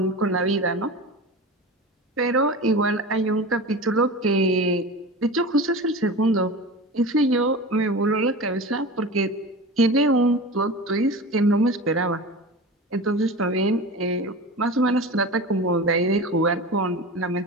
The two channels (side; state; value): both; normal; correlation 0.31